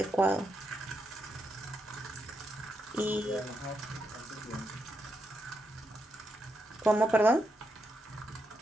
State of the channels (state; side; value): normal; both; correlation 0.82